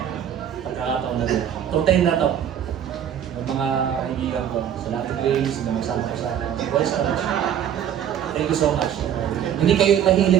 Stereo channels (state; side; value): quieter; left; 9.6 dB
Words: Pagkakataon na ito. Itong time na ito, ng mga kaibigan ko, sa Latin Games, na magsama ko sa Boys College. Thank you so much. Hindi kayo mahilig